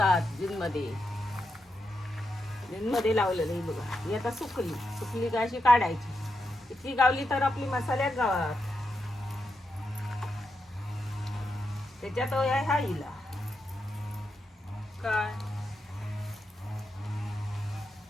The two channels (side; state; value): both; normal; correlation 0.85